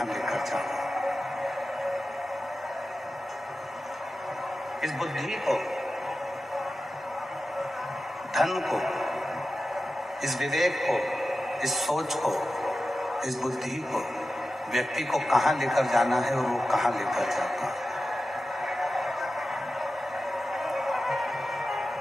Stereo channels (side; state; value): both; normal; correlation 0.93